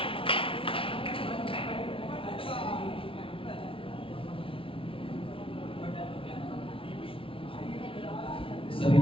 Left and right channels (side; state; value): right; late; 0.26 ms